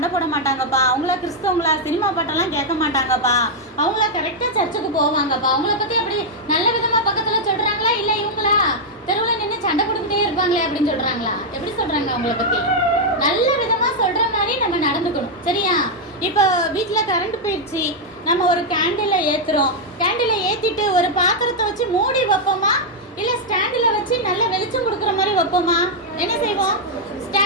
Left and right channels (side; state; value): both; normal; correlation -0.02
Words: போட மாட்டாங்கப்பா, அவங்களா கிறிஸ்தவங்களா, சினிமா பாட்டெல்லாம் கேட்க மாட்டாங்கப்பா, அவங்களா கரெக்டாக சர்ச்சுக்கு போவாங்கப்பா. அவங்கள பற்றி அப்படி நல்ல விதமாக பக்கத்தில் சொல்கிறாங்களா, இல்லை இவங்களா தெருவில் நின்று சண்டை போட்டுக்கிட்டே இருப்பாங்களே அப்படின்னு சொல்கிறாங்களா? எப்படி சொல்கிறாங்க அவங்கள பற்றி? நல்ல விதமாக சொல்கிற மாதிரி நம்ம நடந்துக்கணும், சரியா? இப்போ வீட்டில் கரண்ட் போயிடுச்சு, நம்ம ஒரு கேண்டிலை ஏற்றுறோம். கேண்டிலை ஏற்றிட்டு ஒரு பாத்திரத்தை வச்சு மூடி வைப்போமா, இல்லை ஸ்டாண்டில் வச்சு நல்ல வெளிச்சம் கொடுக்குற மாதிரி வைப்போமா? என்ன செய்வோம்?